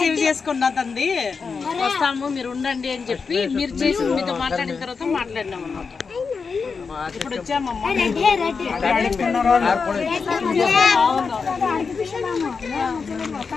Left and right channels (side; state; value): right; quieter; 5.1 dB